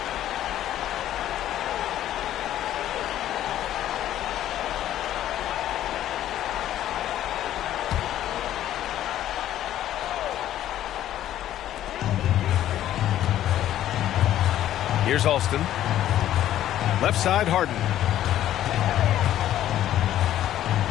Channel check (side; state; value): right; quieter; 12.3 dB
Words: Here's Alston. Left side, Harden.